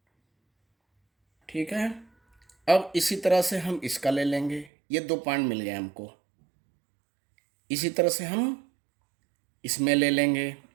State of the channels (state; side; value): drops out; left; at 4.7 s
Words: ठीक है। अब इसी तरह से हम इसका ले लेंगे, ये 2 पॉइंट मिल गए हमको। इसी तरह से हम इसमें ले लेंगे